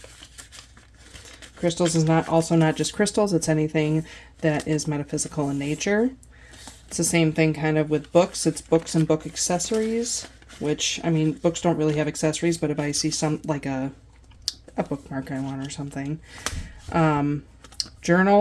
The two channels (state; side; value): identical; both; correlation 1.00